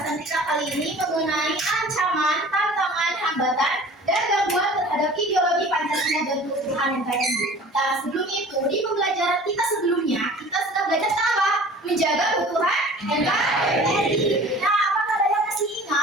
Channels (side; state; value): both; normal; correlation 0.44